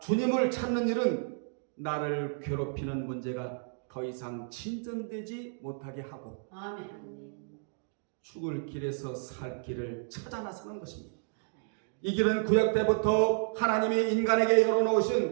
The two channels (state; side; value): silent; left; digital silence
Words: 찾는 일은 나를 괴롭히는 문제가 더 이상 진전되지 못하게 하고 아멘. 죽을 길에서 살 길을 찾아 나서는 것입니다. 이 길은 구약 때부터 하나님이 인간에게